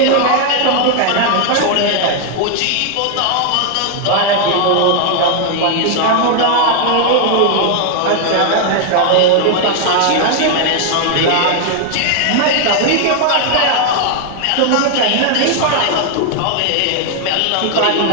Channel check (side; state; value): both; different; correlation 0.00